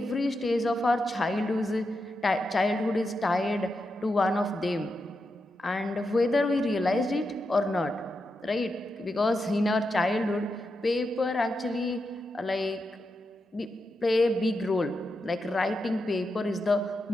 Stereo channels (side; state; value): both; normal; correlation 0.87